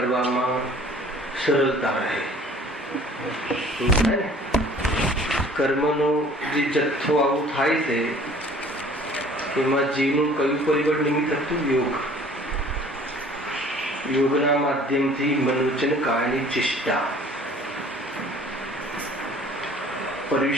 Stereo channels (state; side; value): normal; both; correlation 0.51